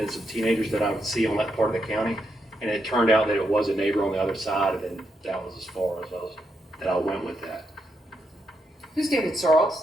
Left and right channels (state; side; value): normal; both; correlation 0.81